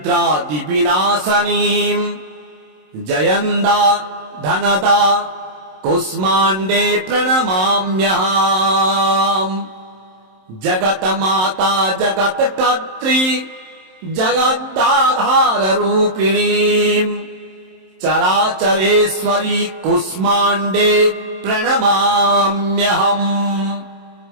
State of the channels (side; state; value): left; late; 27 ms